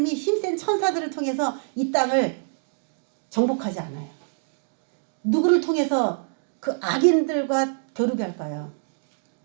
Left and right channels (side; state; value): left; silent; digital silence